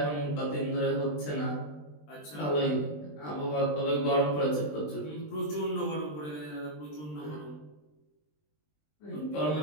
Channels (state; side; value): late; right; 20 ms